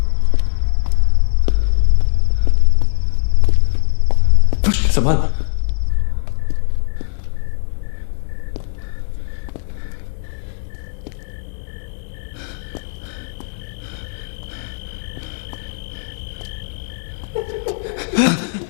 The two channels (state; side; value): silent; right; digital silence